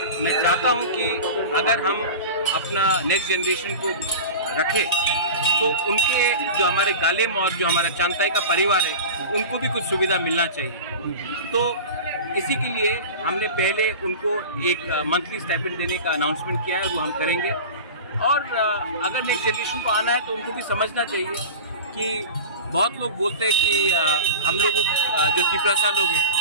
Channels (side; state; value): both; inverted; correlation -0.32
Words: मैं चाहता हूँ कि अगर हम अपना नेक्स्ट जनरेशन को रखें तो उनके जो हमारे गालिम और जो हमारा चांताई का परिवार है उनको भी कुछ सुविधा मिलना चाहिए। तो इसी के लिए हमने पहले उनको एक मंथली स्टाइपेंड देने का अनाउंसमेंट किया है, वो हम करेंगे। और अगर नेक्स्ट जनरेशन को आना है तो उनको भी समझना चाहिए कि बहुत लोग बोलते हैं कि हम लोगों जो त्रिपुरा लोग हैं